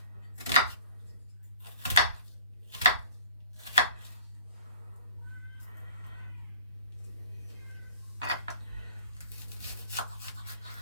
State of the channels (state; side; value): inverted; both; correlation -0.49